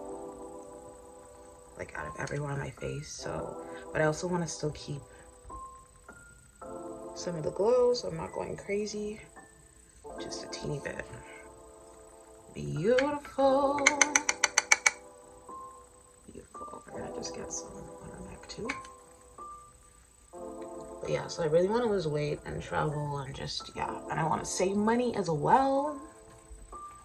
like out of everywhere on my face. So, but I also want to still keep some of the glow, so I'm not going crazy. Just a teeny bit. Beautiful. Beautiful. We're gonna just get some on our neck too. But yeah, so I really want to lose weight and travel and just, yeah. And I want to save money as well.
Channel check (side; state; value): both; identical; correlation 1.00